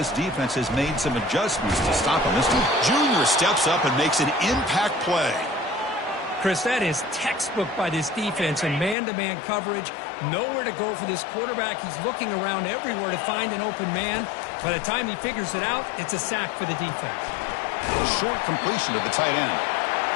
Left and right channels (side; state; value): right; drops out; at 9.0 s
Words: defense has made some adjustments to stop him. This junior steps up and makes an impact play. Chris, that is textbook by this defense in man-to-man coverage. Nowhere to go for this quarterback. He's looking around everywhere to find an open man. By the time he figures it out, it's a sack for the defense. Short completion of the tight end.